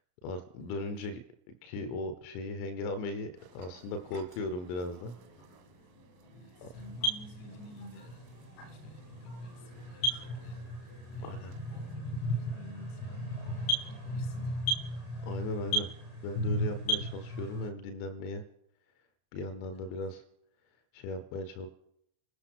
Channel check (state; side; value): late; right; 33 ms